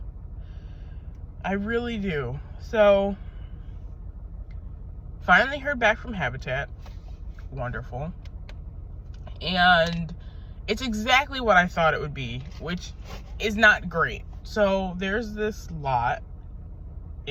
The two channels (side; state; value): both; identical; correlation 1.00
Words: I really do. So, finally heard back from Habitat. Wonderful. And it's exactly what I thought it would be, which is not great. So, there's this lot